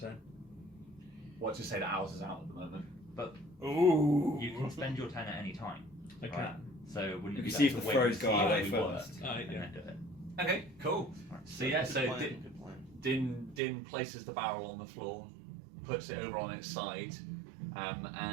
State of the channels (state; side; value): drops out; left; at 13.6 s